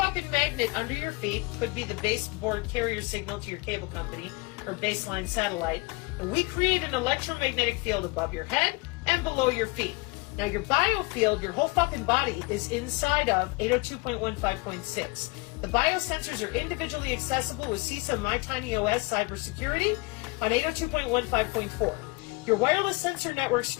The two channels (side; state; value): right; quieter; 26.0 dB